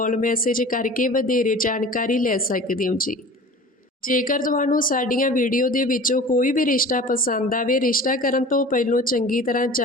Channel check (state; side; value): normal; both; correlation 0.40